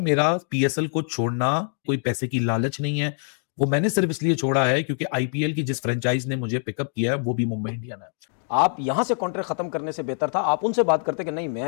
मेरा पीएसएल को छोड़ना कोई पैसे की लालच नहीं है। वो मैंने सिर्फ इसलिए छोड़ा है क्योंकि आईपीएल की जिस फ्रेंचाइज ने मुझे पिकअप किया है वो भी मुंबई इंडियन है। आप यहां से कॉन्ट्रैक्ट खत्म करने से बेहतर था आप उनसे बात करते कि नहीं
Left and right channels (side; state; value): right; silent; digital silence